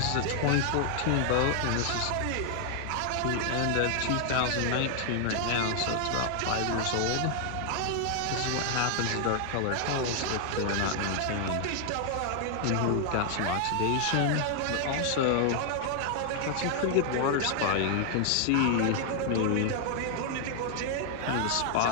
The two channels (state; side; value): different; both; correlation 0.00